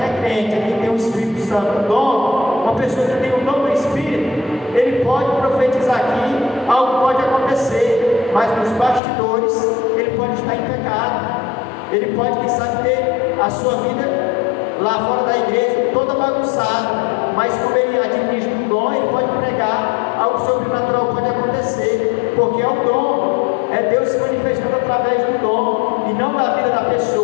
é crente, é quem tem o Espírito Santo. O dom, uma pessoa que tem o dom do Espírito, ele pode profetizar aqui, algo pode acontecer, mas nos bastidores ele pode estar em pecado. Ele pode, quem sabe, ter a sua vida lá fora da igreja toda bagunçada, mas como ele administra um dom, ele pode pregar, algo sobrenatural pode acontecer, porque é o dom, é Deus se manifestando através do dom e não da vida da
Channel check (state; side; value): drops out; right; at 9.0 s